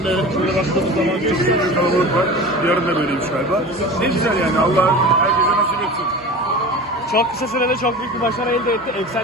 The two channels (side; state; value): right; noise; hum, 26 dB below the sound